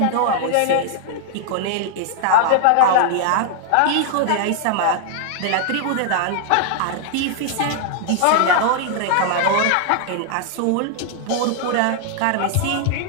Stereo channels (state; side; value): different; both; correlation -0.01